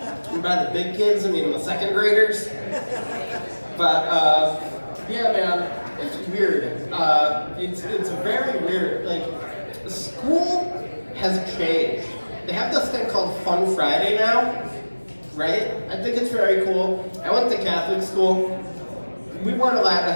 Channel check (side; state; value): both; inverted; correlation -1.00